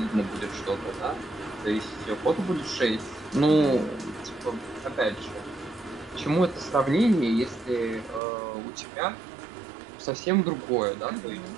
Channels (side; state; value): left; drops out; at 8.2 s